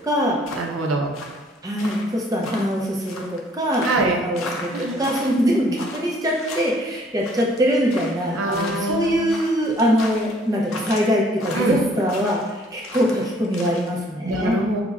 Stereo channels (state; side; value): normal; both; correlation 0.60